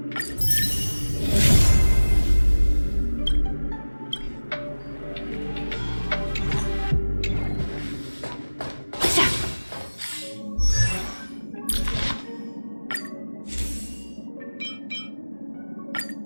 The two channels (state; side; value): inverted; both; correlation -1.00